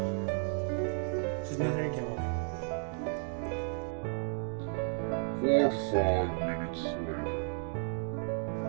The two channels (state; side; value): silent; left; 56 dB below the other